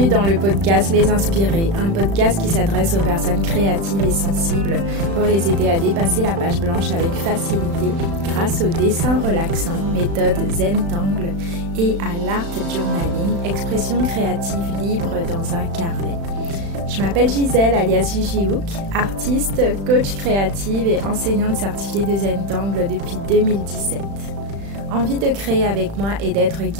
dans le podcast Les Inspirés, un podcast qui s'adresse aux personnes créatives et sensibles pour les aider à dépasser la page blanche avec facilité grâce au dessin relaxant, méthode Zentangle, et à l'art journaling, expression créative libre dans un carnet. Je m'appelle Gisèle alias Gigi Hook, artiste, coach créative et enseignante certifiée de Zentangle depuis 2017. Envie de créer avec moi et d'être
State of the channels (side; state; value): left; late; 36 ms